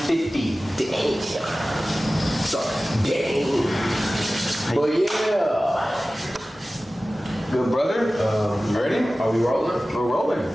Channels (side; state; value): both; normal; correlation 0.96